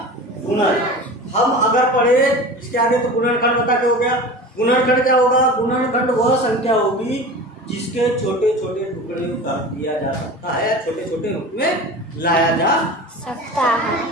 गुणज। हम अगर पढ़े इसके आगे तो गुणनखंड बता के हो गया। गुणनखंड क्या होगा? गुणनखंड वह संख्या होगी जिसके छोटे छोटे टुकड़े कर दिया जा सकता है, छोटे छोटे रूप में लाया जा सकता है।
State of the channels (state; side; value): normal; both; correlation 0.34